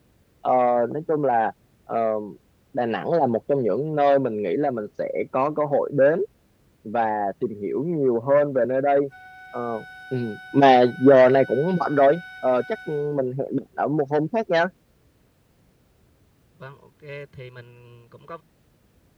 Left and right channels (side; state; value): both; identical; correlation 1.00